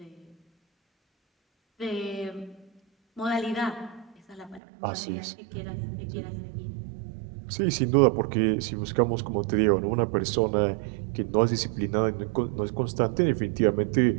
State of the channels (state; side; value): drops out; left; at 4.6 s